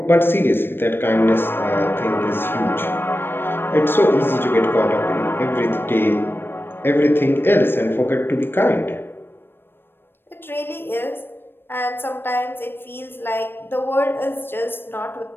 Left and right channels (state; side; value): late; right; 0.10 ms